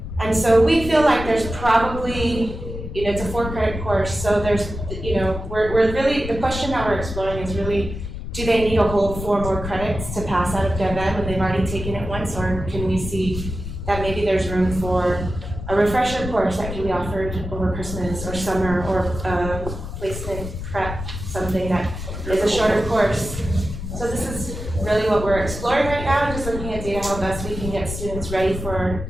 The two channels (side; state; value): left; noise; rumble, 8 dB below the sound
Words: And so we feel like there's probably, it's a 4-credit course, so there's, we're really, the question that we're exploring is really, do they need to hold 4 more credits to pass out of DevEd when they've already taken it once, or can we see that maybe there's room for a refresher course that can be offered over Christmas or summer, or placement prep, something that is a shorter course? So this is really what we're exploring right now, just looking at data, how best we can get students ready for,